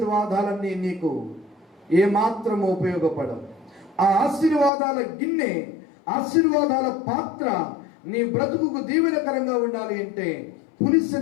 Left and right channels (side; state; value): right; drops out; at 4.7 s